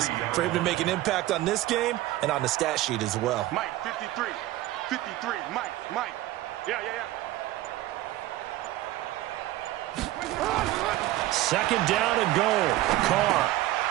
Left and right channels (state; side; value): quieter; left; 16.0 dB